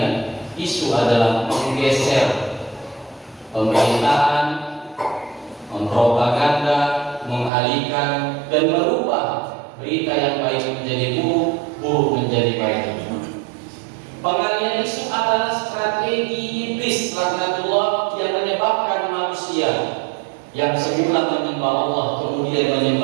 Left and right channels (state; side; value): drops out; left; at 7.5 s